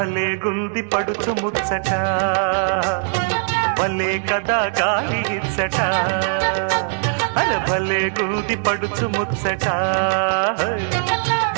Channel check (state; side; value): silent; left; digital silence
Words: గుంది పడుచు ముచ్చట భలే కదా గాలి ఇచ్చట అరే భలే గుంది పడుచు ముచ్చట